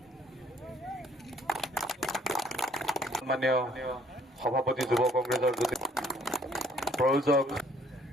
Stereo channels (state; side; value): normal; both; correlation 0.62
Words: সন্মানীয় সভাপতি যুৱ কংগ্ৰেছৰ প্ৰয়োজক